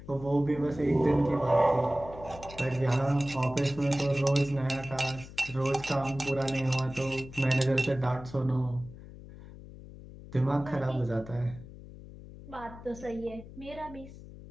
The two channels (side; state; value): left; noise; hum, 16 dB below the sound